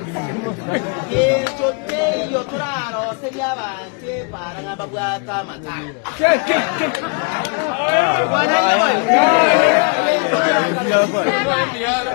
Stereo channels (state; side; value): quieter; right; 34.8 dB